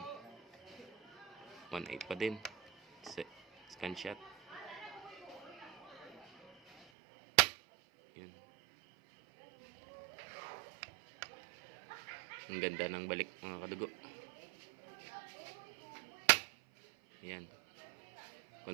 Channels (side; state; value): left; drops out; at 6.9 s